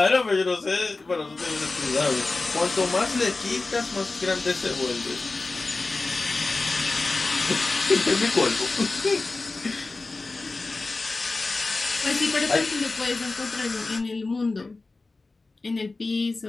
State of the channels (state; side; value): quieter; right; 3.5 dB